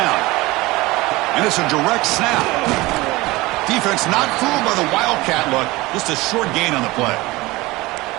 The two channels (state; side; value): quieter; left; 20.7 dB